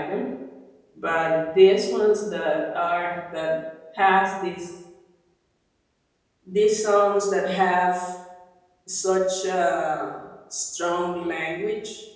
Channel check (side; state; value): both; identical; correlation 1.00